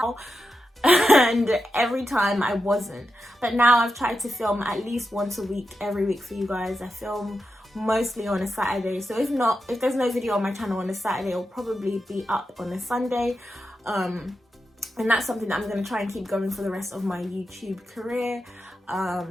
And every time I wasn't. But now I've tried to film at least once a week, every week for you guys. I film mostly on a Saturday. So if there's no video on my channel on a Saturday, it'll probably be up on a Sunday. And that's something that I'm gonna try and keep going for the rest of my YouTube career.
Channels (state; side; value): normal; both; correlation 0.88